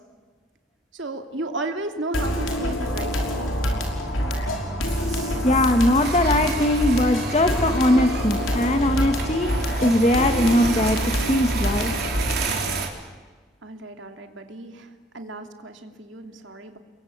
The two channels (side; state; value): both; normal; correlation 0.59